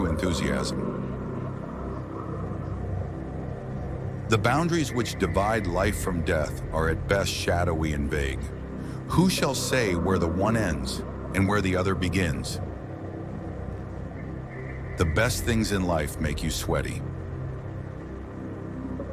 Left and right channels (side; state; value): both; identical; correlation 1.00